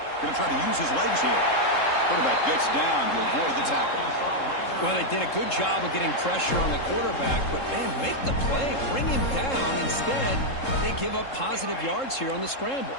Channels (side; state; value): right; late; 3.7 ms